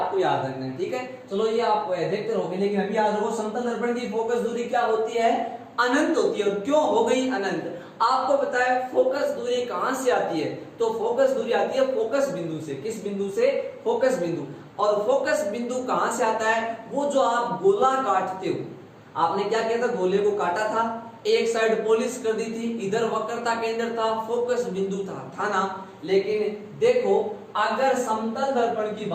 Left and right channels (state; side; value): identical; both; correlation 1.00